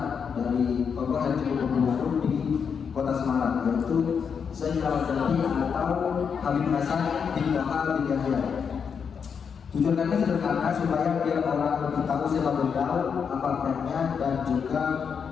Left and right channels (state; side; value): quieter; right; 6.6 dB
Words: dari tokoh yang cukup berpengaruh di Kota Semarang, yaitu Syekh Keramat Jati atau Habib Hasan bin Bakar bin Yahya. Tujuan kami sederhana supaya biar orang lebih tahu siapa beliau, apa perannya, dan juga